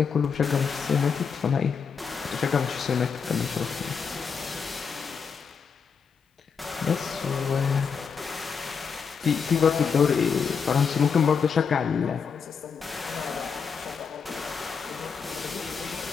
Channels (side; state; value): right; quieter; 6.1 dB